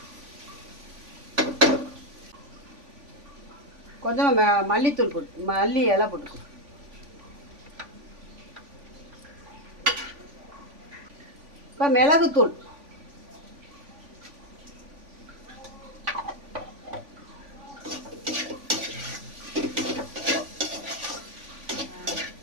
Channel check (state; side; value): late; left; 3.5 ms